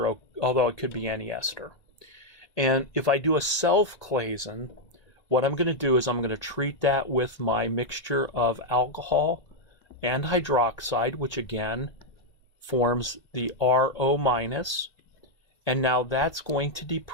although it could be any ester. And if I do a self-Claisen, what I'm going to do is I'm going to treat that with my mixture of alcohol and hydroxide, which again forms the RO-. And now that's going to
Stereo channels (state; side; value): late; right; 1.8 ms